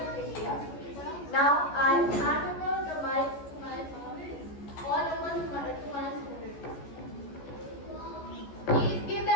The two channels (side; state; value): right; late; 14 ms